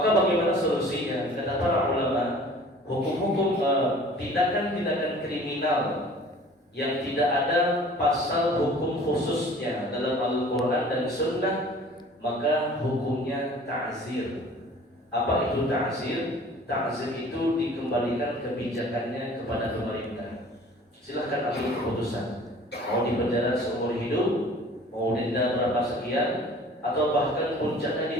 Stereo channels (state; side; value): normal; both; correlation 0.48